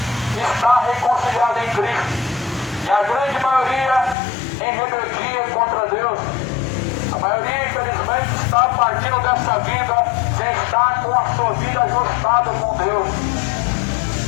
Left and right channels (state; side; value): drops out; right; at 4.2 s